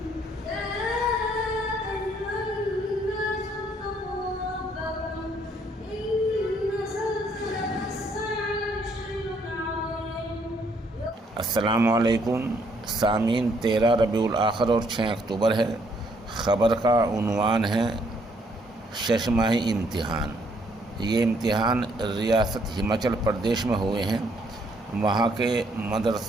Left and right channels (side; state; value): both; normal; correlation 0.68